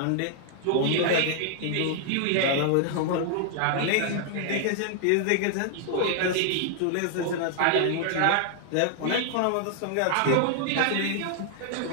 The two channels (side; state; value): both; different; correlation 0.00